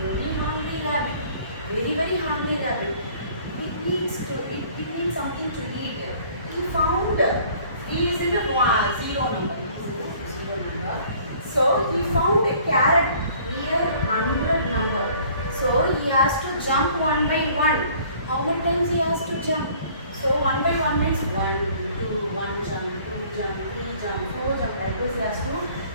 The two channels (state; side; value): inverted; both; correlation -0.54